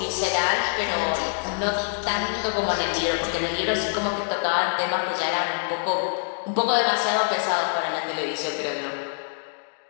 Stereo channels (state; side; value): silent; right; digital silence